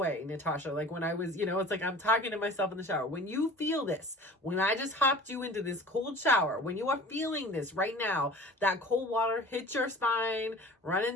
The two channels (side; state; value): both; normal; correlation 0.42